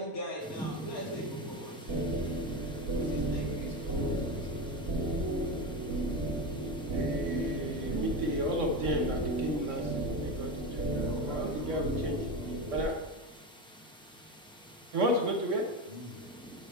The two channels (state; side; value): normal; both; correlation 0.20